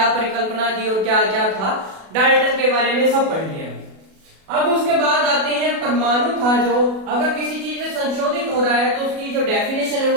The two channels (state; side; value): late; left; 37 ms